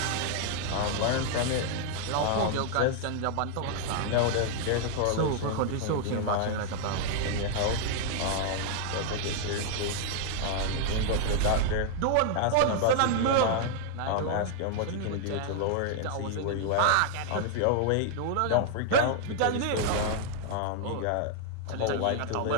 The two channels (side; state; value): both; different; correlation -0.01